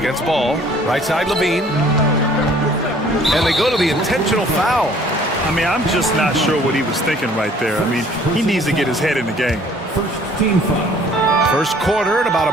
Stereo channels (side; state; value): both; normal; correlation 0.56